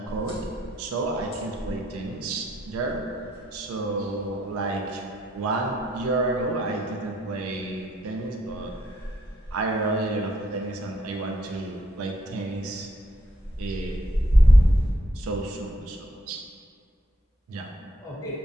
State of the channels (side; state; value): both; normal; correlation 0.71